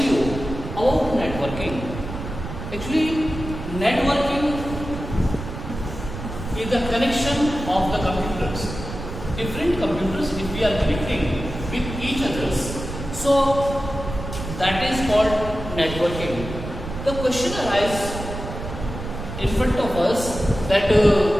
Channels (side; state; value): right; noise; rumble, 8 dB below the sound